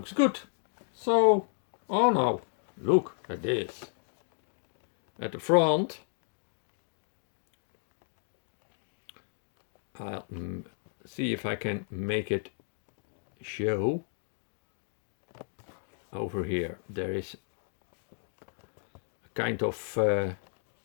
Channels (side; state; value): right; silent; 56 dB below the other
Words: good. So, oh no, look at this. At the front, I'll see if I can make it show. Over here, there is a kind of